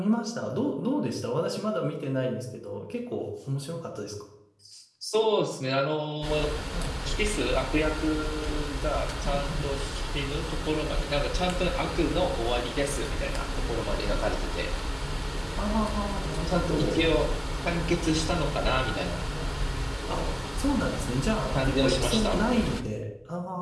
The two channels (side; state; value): both; identical; correlation 1.00